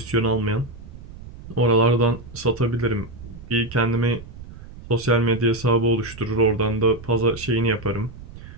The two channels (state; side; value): noise; right; rumble, 15 dB below the sound